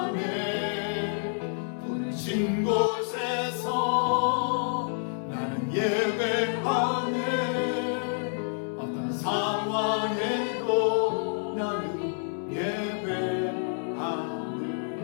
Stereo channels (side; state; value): right; silent; 59 dB below the other